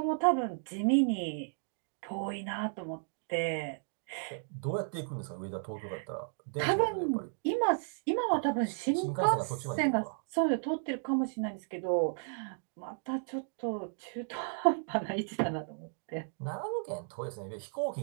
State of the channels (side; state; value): left; silent; digital silence